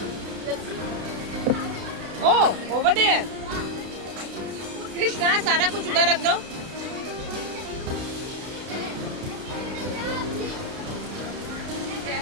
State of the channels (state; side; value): late; left; 32 ms